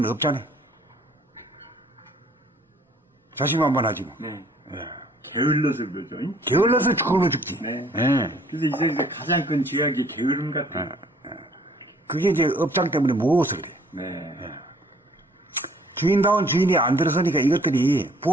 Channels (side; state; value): both; normal; correlation 0.59